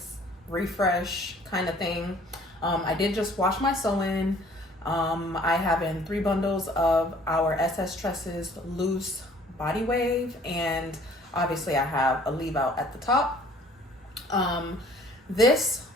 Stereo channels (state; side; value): normal; both; correlation 0.55